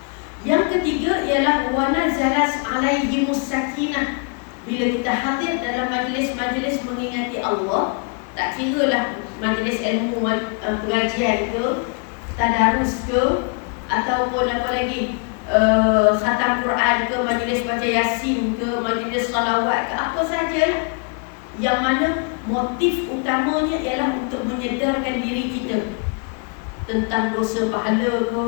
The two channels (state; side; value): quieter; right; 37.8 dB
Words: Yang ketiga ialah wa nazalas alaihimus sakinah. Bila kita hadir dalam majlis-majlis mengingati Allah, tak kiralah majlis ilmu pengajian ke, tadarus ke, ataupun apa lagi, khatam Quran ke, majlis baca Yasin ke, majlis salawat ke, apa sajalah, yang mana motif utamanya ialah untuk menyedarkan diri kita tentang dosa pahala ke,